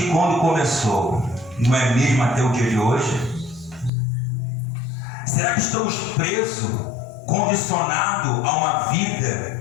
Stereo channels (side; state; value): right; drops out; at 3.9 s